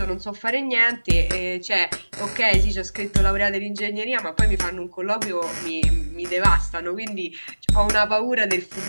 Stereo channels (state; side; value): inverted; both; correlation -1.00